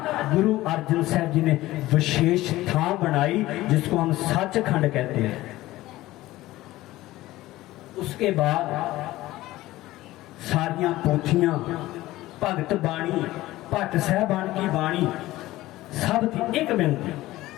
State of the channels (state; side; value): quieter; right; 16.9 dB